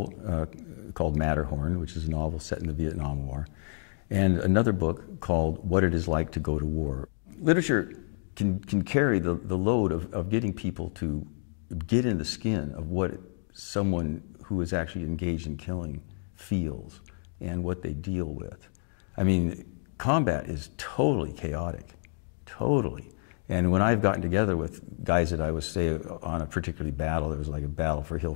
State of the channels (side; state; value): right; silent; digital silence